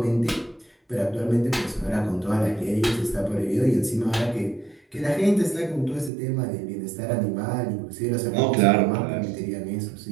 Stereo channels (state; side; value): drops out; left; at 6.1 s